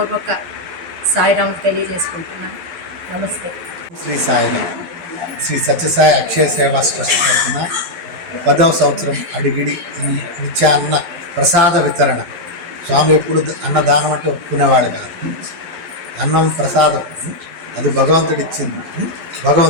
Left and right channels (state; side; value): late; left; 11 ms